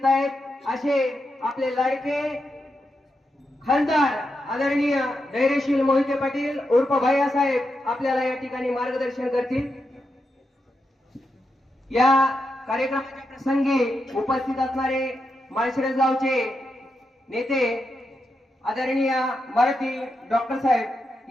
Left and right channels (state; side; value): normal; both; correlation 0.86